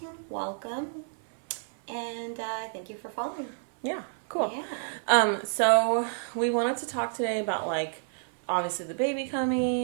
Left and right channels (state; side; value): silent; left; 58 dB below the other